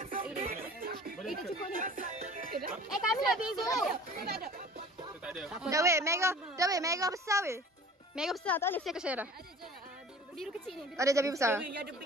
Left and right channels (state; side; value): normal; both; correlation 0.44